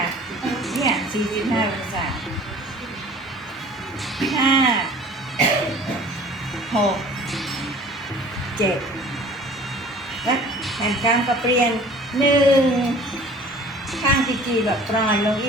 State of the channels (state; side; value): normal; both; correlation 0.48